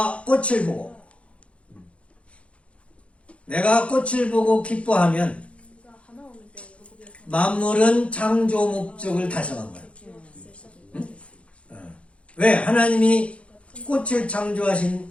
꽃을 보고 기뻐하면 만물은 창조 목적을 달성한 거야. 응? 왜? 하나님이 꽃을 창조하신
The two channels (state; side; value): late; right; 0.061 ms